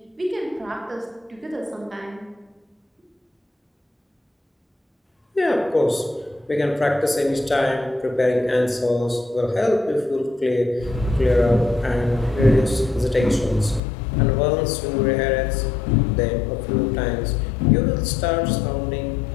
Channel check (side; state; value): right; drops out; at 13.8 s